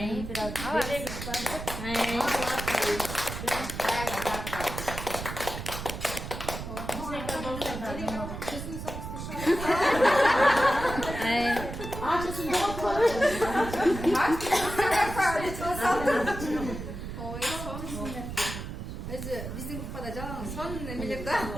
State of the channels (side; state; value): right; noise; rumble, 8 dB below the sound